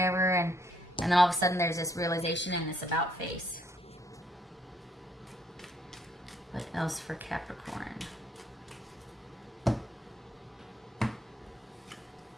and then all of a sudden there's this realization and this about face. What else for Capricorn? All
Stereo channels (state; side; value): normal; both; correlation 0.68